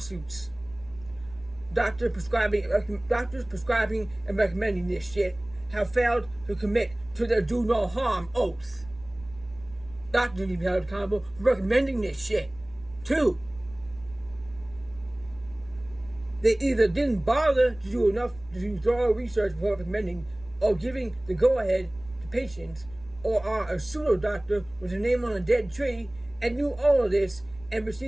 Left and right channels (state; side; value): noise; right; rumble, 20 dB below the sound